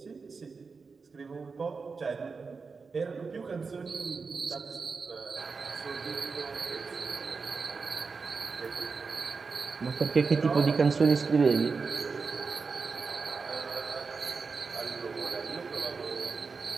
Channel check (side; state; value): left; quieter; 4.8 dB